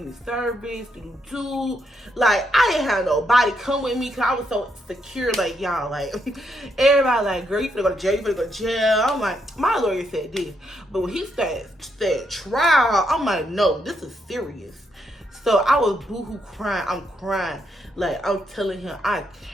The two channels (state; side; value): normal; both; correlation 0.78